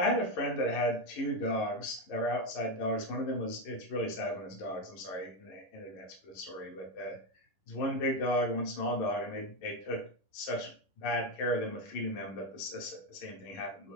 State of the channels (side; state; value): right; late; 11 ms